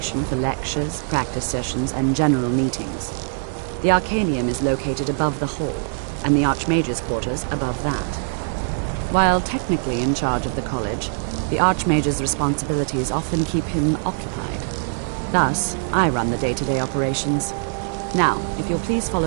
for lectures, practice sessions, and general meetings. The Arcanium is located above the hall, and the Archmage's quarters above that. While technically in charge of the college, the Archmage's responsibilities often keep him occupied. Thus, I run the day-to-day operations. Now, if you'll please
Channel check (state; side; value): silent; left; 64 dB below the other